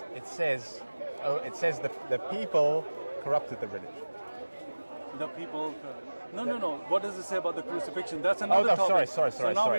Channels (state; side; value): inverted; both; correlation -1.00